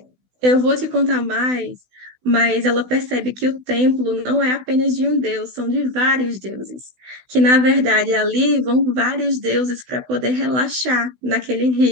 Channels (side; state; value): left; late; 16 ms